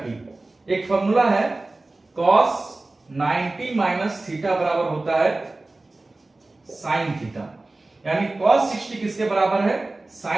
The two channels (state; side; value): quieter; left; 3.0 dB